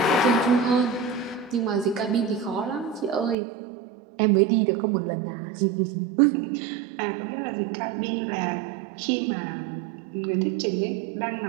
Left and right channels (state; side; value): drops out; left; at 3.4 s